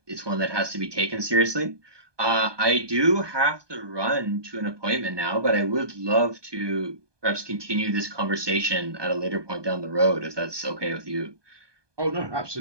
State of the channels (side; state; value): left; late; 1.2 ms